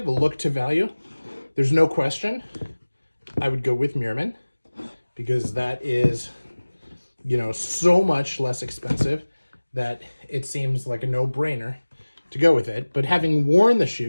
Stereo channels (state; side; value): inverted; both; correlation -1.00